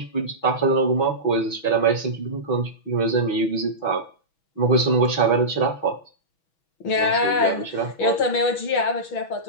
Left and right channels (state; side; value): late; right; 6.2 ms